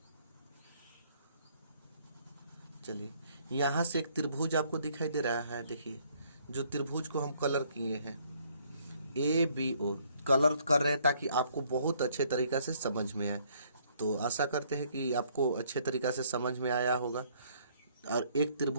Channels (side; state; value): both; inverted; correlation -0.64